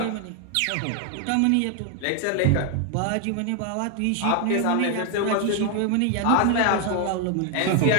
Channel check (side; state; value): both; different; correlation 0.01